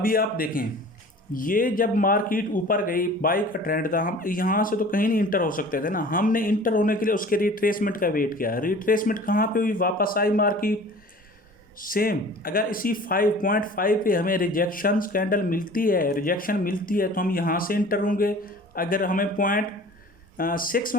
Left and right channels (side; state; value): both; normal; correlation 0.44